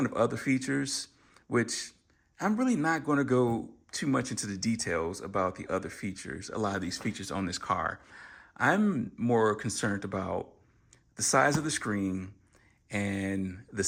of other features, which I'm really not going to go too much into the details about the other features, a lot of these features on this car. I'm more concerned about the size of the screen and the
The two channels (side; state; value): both; identical; correlation 1.00